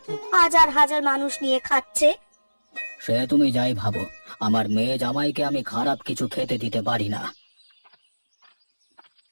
হাজার হাজার মানুষ নিয়ে খাচ্ছে। সে তুমি যাই ভাবো, আমার মেয়ে জামাইকে আমি খারাপ কিছু খেতে দিতে পারি না।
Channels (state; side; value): inverted; both; correlation -1.00